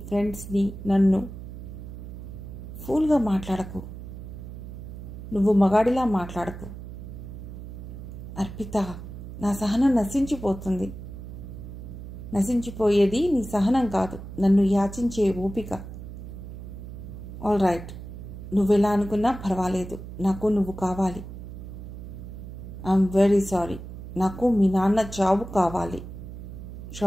ఫ్రెండ్స్ని, నన్ను. ఫూల్గా మాట్లాడకు. నువ్వు మగాడిలా మాట్లాడకు. అర్పిత, నా సహనం నశించిపోతుంది. నశించిపోయేది నీ సహనం కాదు, నన్ను యాచించే ఓపిక. ఆల్ రైట్, నువ్వెలా అనుకున్నా పర్వాలేదు, నాకు నువ్వు కావాలి. ఐఎమ్ వెరీ సారీ, నాకు మీ నాన్న చావు కావాలి.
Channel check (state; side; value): noise; right; hum, 11 dB below the sound